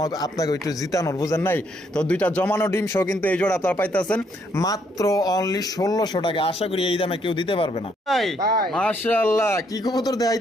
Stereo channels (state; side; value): normal; both; correlation 0.71